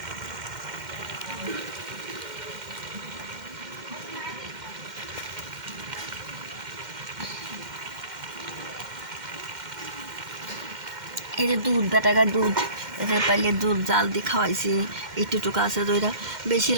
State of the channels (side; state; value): left; late; 2.1 ms